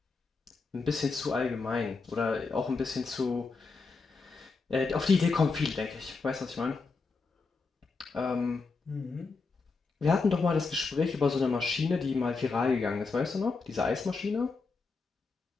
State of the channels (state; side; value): quieter; right; 4.3 dB